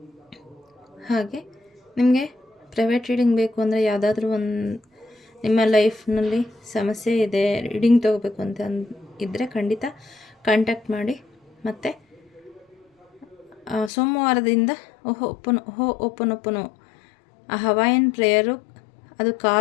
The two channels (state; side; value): drops out; right; at 13.9 s